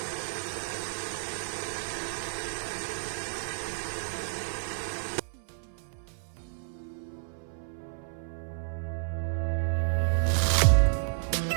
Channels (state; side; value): silent; left; 57 dB below the other